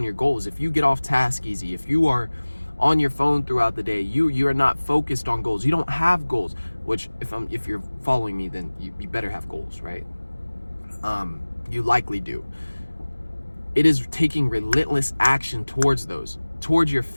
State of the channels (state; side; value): inverted; both; correlation -1.00